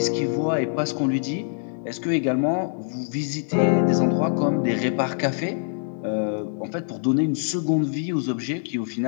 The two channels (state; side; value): silent; right; digital silence